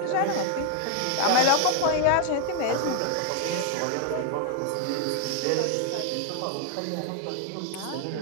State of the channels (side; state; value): both; different; correlation 0.00